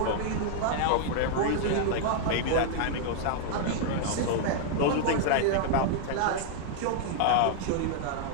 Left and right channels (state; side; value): different; both; correlation -0.01